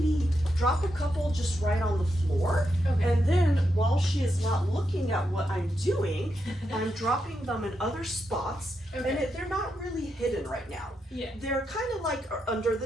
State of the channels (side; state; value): both; normal; correlation 0.84